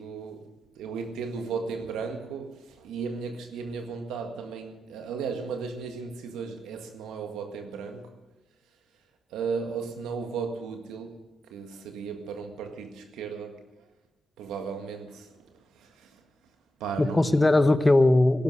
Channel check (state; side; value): normal; both; correlation 0.89